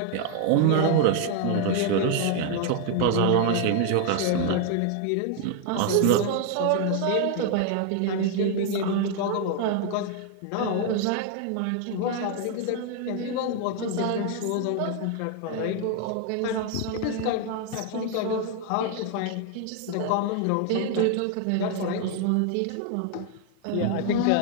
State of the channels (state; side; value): different; both; correlation 0.00